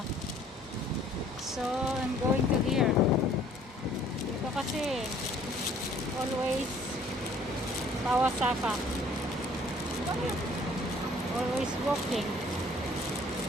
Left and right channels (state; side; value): normal; both; correlation 0.57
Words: So, I'm going to here. Dito kasi always Kawasaka. Always walking.